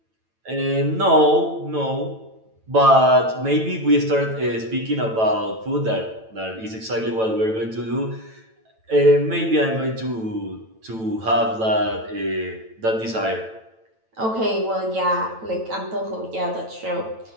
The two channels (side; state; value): left; late; 9.0 ms